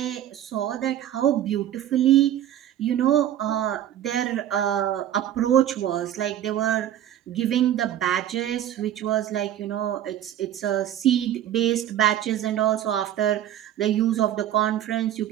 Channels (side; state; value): left; quieter; 11.5 dB